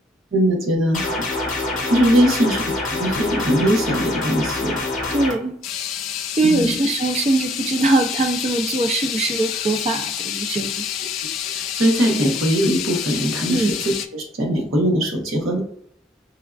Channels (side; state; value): both; normal; correlation 0.65